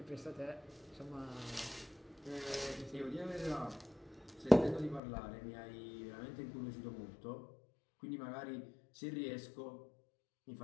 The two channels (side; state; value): right; drops out; at 5.0 s